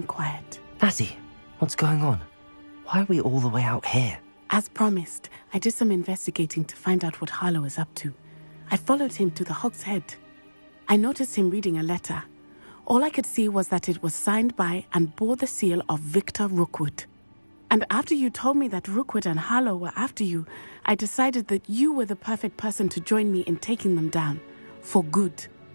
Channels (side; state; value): both; inverted; correlation -1.00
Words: quiet. Natty, what's going on? Why are we all the way out here? As promised, I did some investigating to find out what Harlow is up to. I followed him to the Hog's Head. I noticed him reading a letter. All I could see was that it was signed by and bore the seal of Victor Rookwood. And after you told me that Rookwood and Harlow were after you, I decided that you were the perfect person to join me in taking them down. For good.